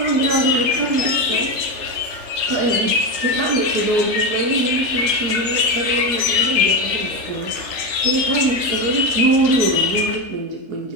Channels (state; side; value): late; left; 3.5 ms